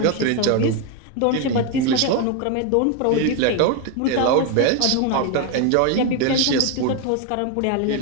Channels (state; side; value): different; both; correlation 0.02